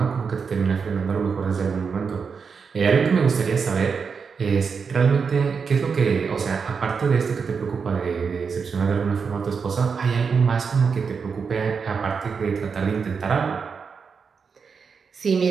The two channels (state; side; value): quieter; left; 5.7 dB